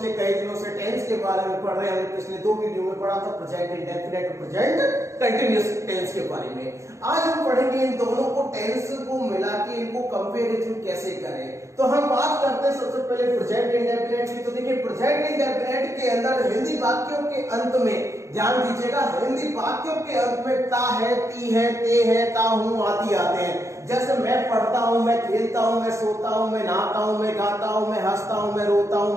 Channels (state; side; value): late; left; 0.14 ms